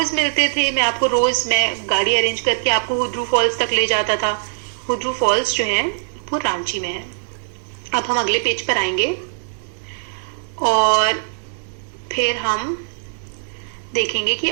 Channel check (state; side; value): silent; left; digital silence